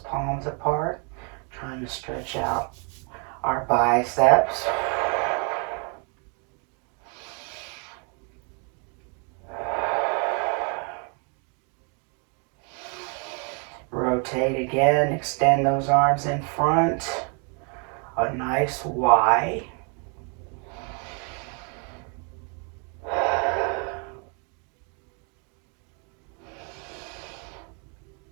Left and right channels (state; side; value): quieter; left; 37.3 dB